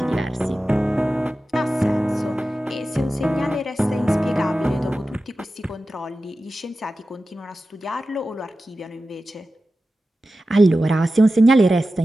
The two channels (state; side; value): normal; both; correlation 0.94